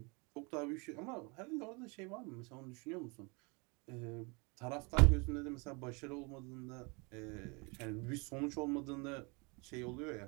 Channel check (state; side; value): quieter; left; 30.1 dB